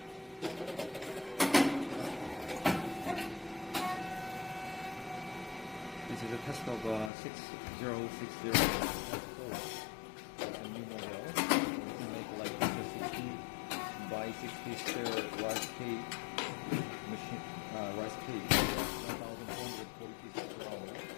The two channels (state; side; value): drops out; right; at 7.1 s